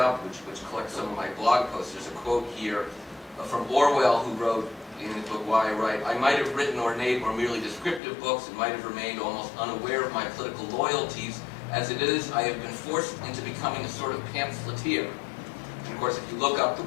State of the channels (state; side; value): drops out; right; at 8.0 s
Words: which collects some of my blog posts. There's a quote here from Orwell, who wrote in his book Why I Write, "I might have written ornate or merely descriptive books and might have remained almost unaware of my political loyalties. As it is, I have been forced into becoming a sort of pamphleteer." And of course, if you look up the